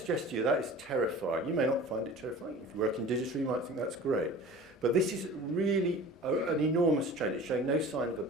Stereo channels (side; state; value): both; normal; correlation 0.40